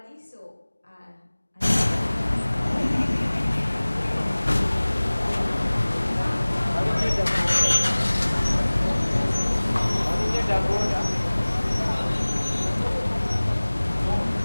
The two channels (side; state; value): both; inverted; correlation -1.00